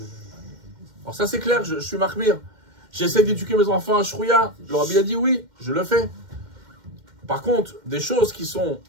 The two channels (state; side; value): late; left; 2.1 ms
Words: Alors ça, c'est clair, je suis marmire. J'essaie d'éduquer mes enfants à Shrouya. Le rabbi a dit oui, je le fais. Par contre, des choses qui sont